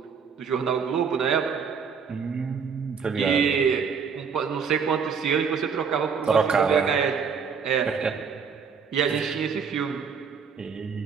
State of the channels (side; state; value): left; quieter; 6.2 dB